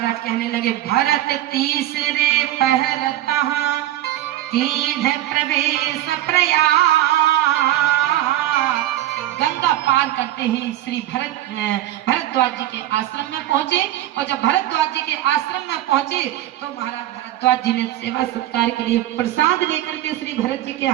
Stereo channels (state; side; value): quieter; left; 13.7 dB